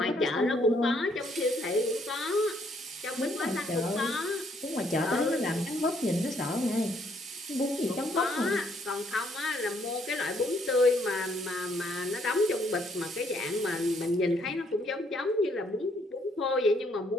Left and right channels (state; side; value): normal; both; correlation 0.69